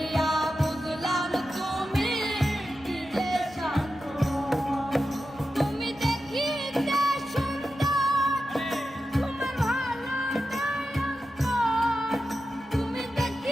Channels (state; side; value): normal; both; correlation 0.91